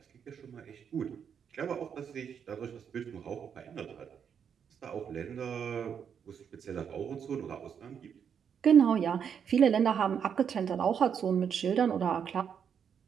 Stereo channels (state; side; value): quieter; left; 7.6 dB